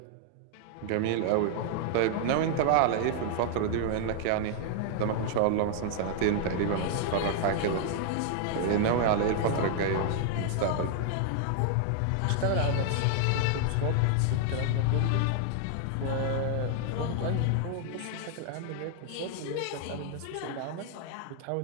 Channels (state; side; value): different; both; correlation 0.00